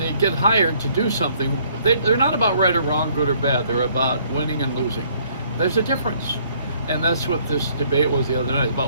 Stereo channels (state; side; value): inverted; both; correlation -0.63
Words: get hired to do something. They're not about right or wrong, good or bad. They're about winning and losing. There's a difference. And that's what this debate was the other night. It's